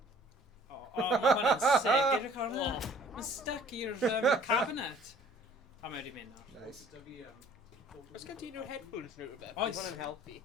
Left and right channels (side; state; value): both; normal; correlation 0.54